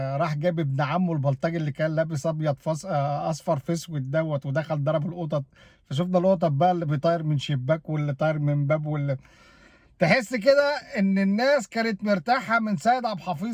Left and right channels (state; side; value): identical; both; correlation 1.00